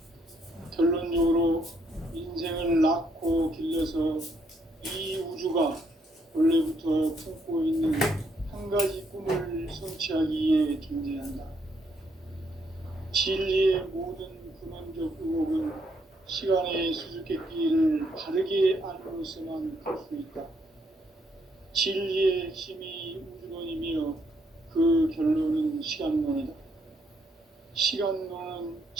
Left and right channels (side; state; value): both; normal; correlation 0.73